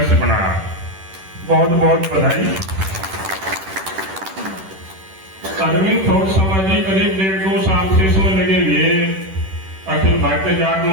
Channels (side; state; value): left; late; 10 ms